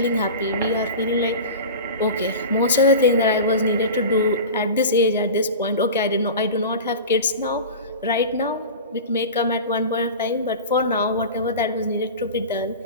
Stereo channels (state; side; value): inverted; both; correlation -0.32